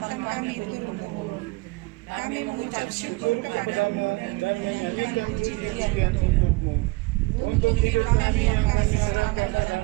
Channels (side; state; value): left; quieter; 23.6 dB